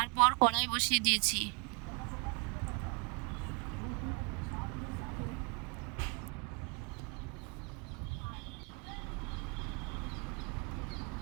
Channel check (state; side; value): quieter; left; 34.3 dB